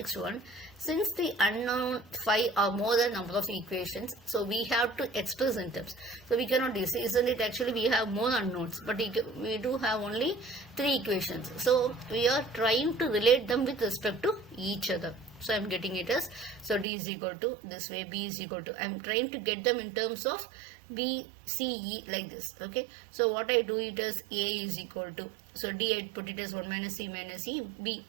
one, since the unknown phi are more than number of equations, so we have to express in terms. So we cannot do, isn't it, actually we have more unknowns, but we do have only 3 equations. So we are trying to relate them with respect to each other. So I am getting it as, so D is equal to this way, B is equal to, I am trying to get them in terms of B, C, E, like this. Okay, so what I do it as A is equal to, so D I put it as 1 minus C minus E, B,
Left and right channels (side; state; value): left; drops out; at 16.9 s